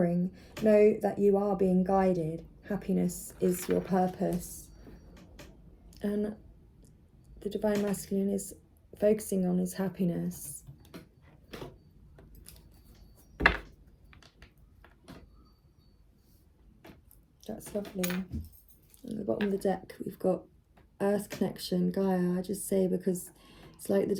Know that you are being guided. Happiness is your purpose. And the Divine Masculine is focusing on his happiness. That's lovely. At the bottom of the deck, we've got Earth Connection, Gaia. I just say because it's like the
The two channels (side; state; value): both; identical; correlation 1.00